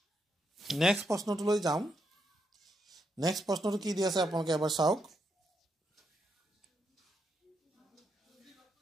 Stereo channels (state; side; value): normal; both; correlation 0.80